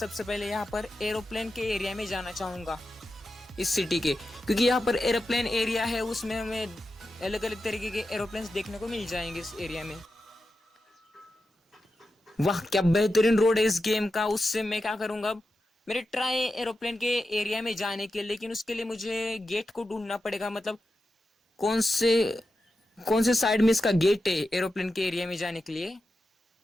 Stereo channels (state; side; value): normal; both; correlation 0.90